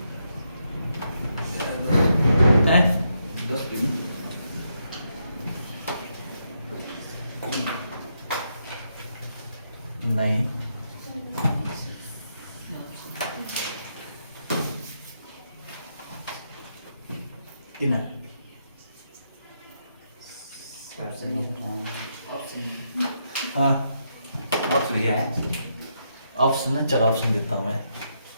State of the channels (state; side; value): inverted; both; correlation -0.80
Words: नहीं, कितना हाँ ऑप्शन क्या है? ऑप्शन में चलो ऑप्शन देता हूं मैं।